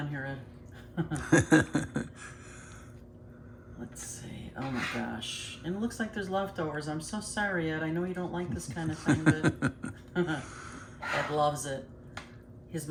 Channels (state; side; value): identical; both; correlation 1.00